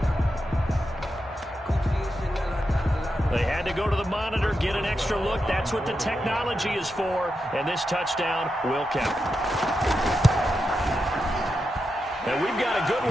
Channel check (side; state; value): both; normal; correlation 0.87